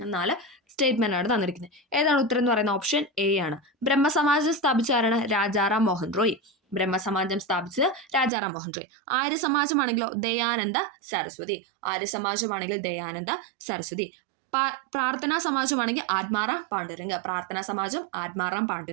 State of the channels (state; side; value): drops out; left; at 8.3 s